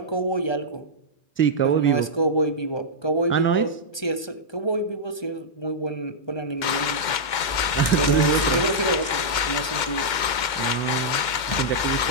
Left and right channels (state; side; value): late; right; 2.2 ms